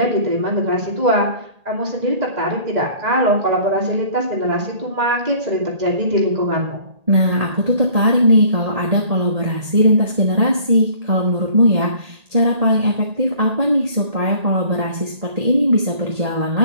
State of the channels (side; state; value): left; late; 1.8 ms